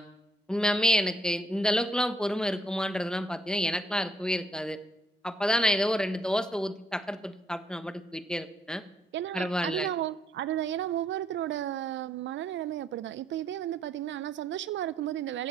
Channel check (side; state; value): both; normal; correlation 0.69